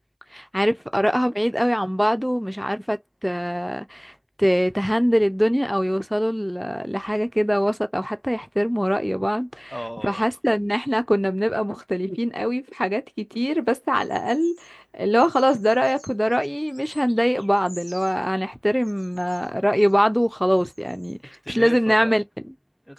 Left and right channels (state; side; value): identical; both; correlation 1.00